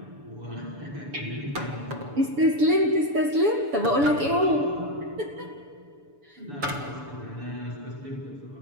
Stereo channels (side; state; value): left; late; 7.0 ms